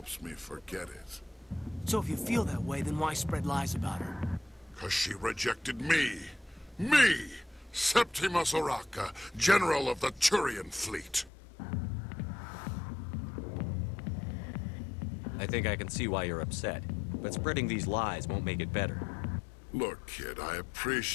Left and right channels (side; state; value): right; drops out; at 11.3 s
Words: me forget it. So if you feel that way, then why spread lies about her? 'Cause she rejected me! Me! Septimus Oraka, General of the Turian Fleet! I think I can see why you're upset, but spreading these lies won't make it better. Look, kid, I